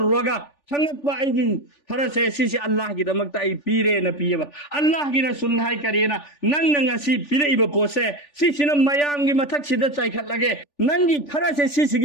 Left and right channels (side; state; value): right; late; 3.4 ms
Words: संगपा अइदि फरसे सिसे अल्लाह की दमकता अइ पीरे न पियबा अल्लाह की रसूल हाइ करेना नंग ngasi पिरेइबा पोसे सिसिना मयाम की मथक सिदा चाइखटलगे नंगी फरसे